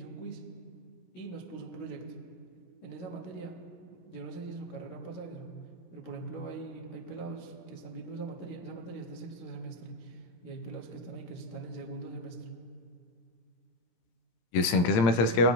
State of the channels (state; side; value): late; right; 17 ms